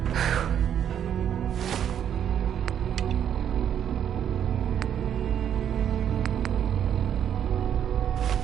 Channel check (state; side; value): quieter; left; 9.3 dB